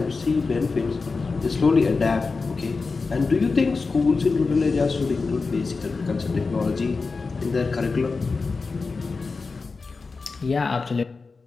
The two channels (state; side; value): quieter; right; 4.3 dB